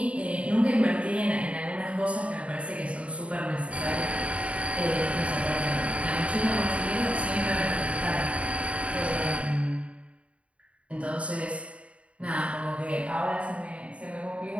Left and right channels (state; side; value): late; left; 0.063 ms